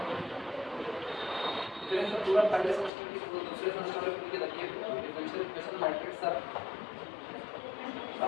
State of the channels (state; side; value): drops out; right; at 2.9 s